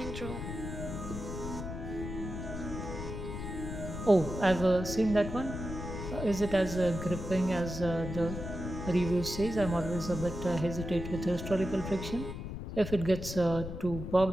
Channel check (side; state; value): left; noise; rumble, 7 dB below the sound